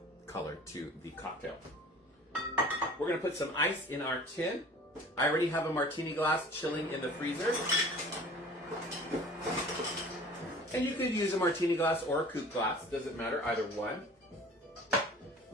color to the cocktail. We're going to put some ice in our tin. I already have a martini glass chilling in the freezer. And you could use a martini glass or a coupe glass. Doesn't matter, either one.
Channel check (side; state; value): both; normal; correlation 0.45